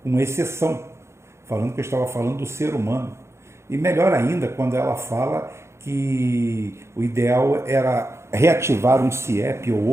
com exceção, falando que eu estava falando do ser humano. E melhor ainda, quando ela fala que o ideal era reativar um CIEP ou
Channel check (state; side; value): late; left; 0.13 ms